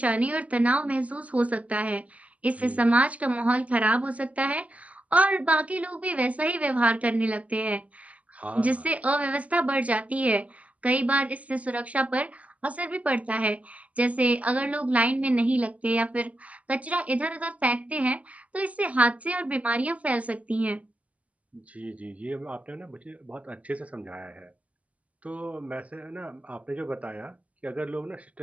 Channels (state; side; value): late; left; 0.070 ms